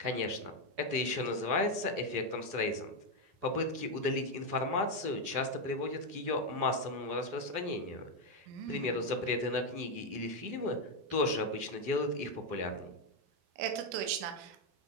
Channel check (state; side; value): late; left; 12 ms